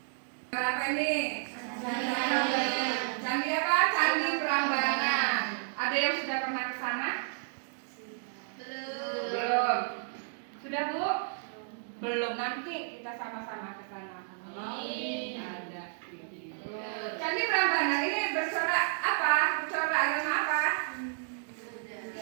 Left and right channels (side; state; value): left; silent; digital silence